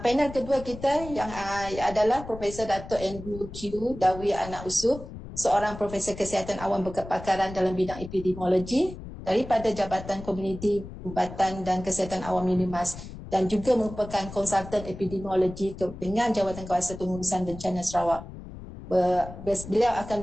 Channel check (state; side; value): noise; left; rumble, 12 dB below the sound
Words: kedua kita yang adalah Profesor Datuk Andrew Q. Dawi Anak Usuh, seorang Profesor Kesihatan Awam berkepakaran dalam bidang epidemiologi daripada Jabatan Komuniti Perubatan dan Kesihatan Awam Unimas dan juga merupakan konsultan epidemiologi dengan Jawatankuasa Pengurusan Bencana Sarawak. Beliau akan